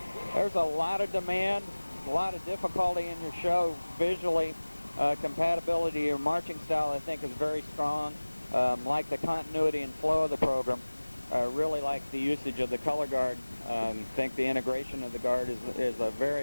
There's a lot of demand, a lot of difficulty in your show visually. Compatibility to your marching style, I think, is very strong. Like the continuity and flow of the program. Really like the usage of the color guard. Think the integration of the guard is a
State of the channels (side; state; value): both; inverted; correlation -1.00